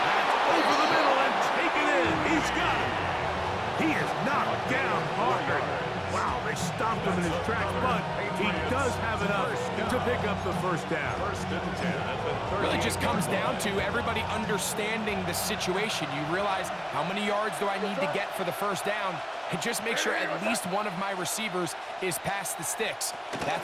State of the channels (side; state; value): both; identical; correlation 1.00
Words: over the middle and taken in. He's got it. He is knocked down hard. Wow, they stopped him in his tracks, but he does have enough to pick up the first down. Really just comes down to everybody understanding the situation. You realize how many yards do I need to get for the first down, and just make sure at least one of my receivers is past the sticks.